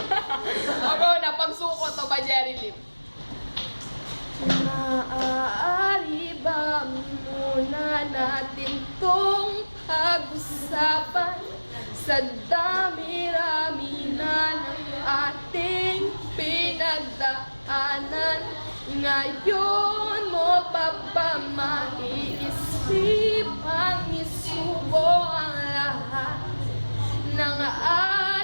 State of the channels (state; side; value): inverted; both; correlation -1.00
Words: Ako na, pagsuko to ba Jerry Lim? Maaari ba muna natin tong pag-usapan sa dami-rami na ng ating pinagdaanan? Ngayon mo pa ba maiisip ang isubo ang lahat ng